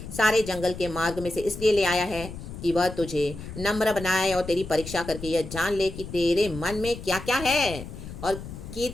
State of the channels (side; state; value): left; noise; rumble, 11 dB below the sound